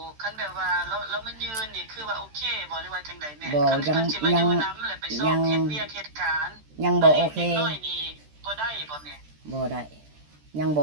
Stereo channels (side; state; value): left; late; 13 ms